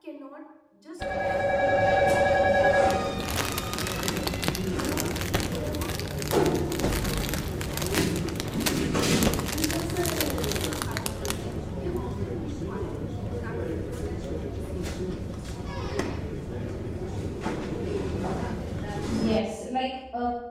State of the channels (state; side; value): identical; both; correlation 1.00